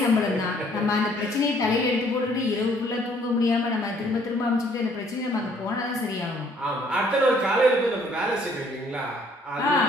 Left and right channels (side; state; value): both; normal; correlation 0.62